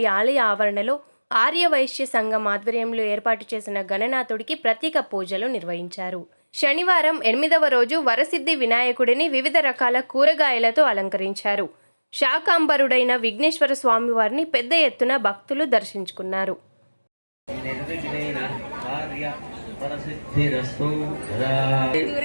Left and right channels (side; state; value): both; inverted; correlation -1.00